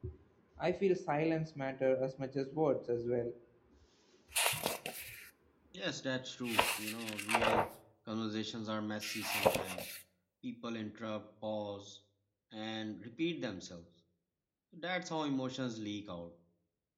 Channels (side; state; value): both; identical; correlation 1.00